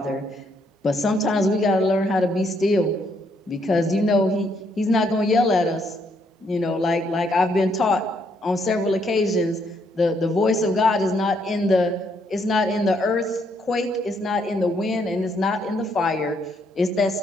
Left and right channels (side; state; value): both; normal; correlation 0.72